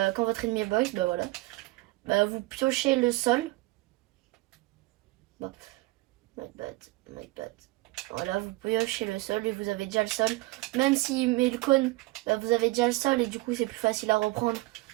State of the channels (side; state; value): left; quieter; 21.5 dB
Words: quand votre ennemi est box, bah voilà. Bah, vous piochez le sol. Bah, my bad. Voilà, vous piochez le sol et vous avez déjà le sol. Même s'il met le cône, bah, vous avez déjà le sol et du coup, c'est plus facile à reprendre.